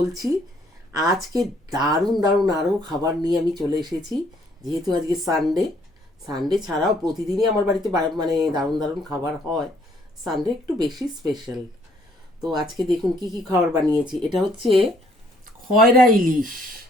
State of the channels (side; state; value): both; normal; correlation 0.65